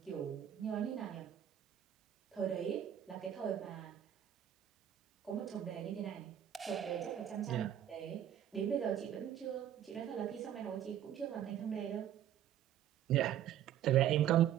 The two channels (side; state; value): left; quieter; 10.6 dB